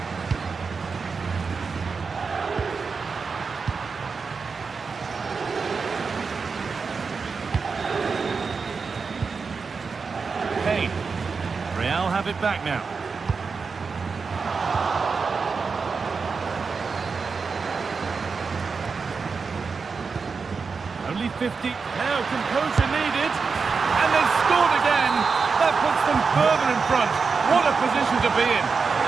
Real have it back now. Only 50. Now composure needed. And they've scored again. That puts them further in front. What a position to be in.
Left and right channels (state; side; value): quieter; left; 5.0 dB